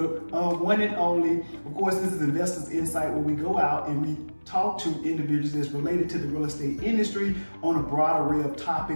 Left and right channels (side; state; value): both; inverted; correlation -1.00